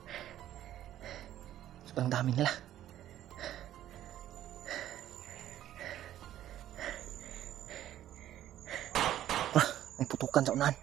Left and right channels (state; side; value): quieter; left; 12.4 dB